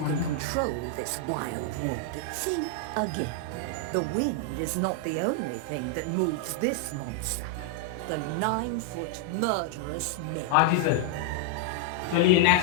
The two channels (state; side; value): different; both; correlation -0.01